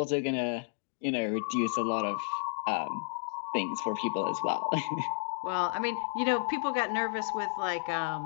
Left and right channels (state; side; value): silent; right; 57 dB below the other